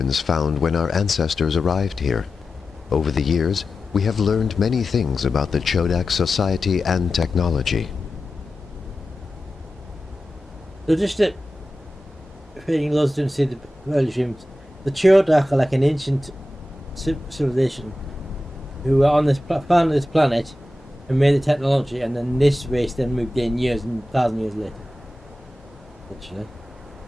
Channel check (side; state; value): both; normal; correlation 0.93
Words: found when our ancestors arrived here. Over the years, we have learned many things about the Chodak society and technology. So just to, if anything those didn't see the early streams, the Chodak are like an ancient civilization who were on this found this planet and made the technology, and then this race then moved in years and 1,000 years later. Literally.